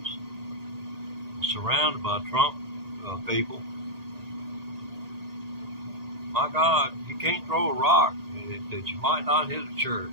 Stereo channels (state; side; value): late; left; 1.8 ms